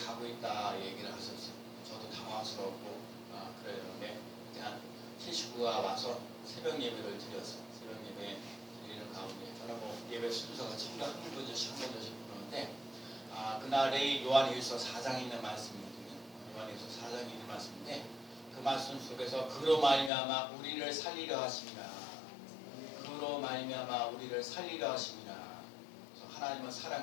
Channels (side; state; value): right; drops out; at 20.1 s